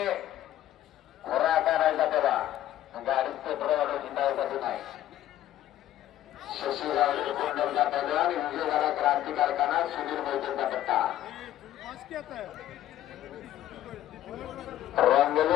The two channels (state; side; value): quieter; right; 12.9 dB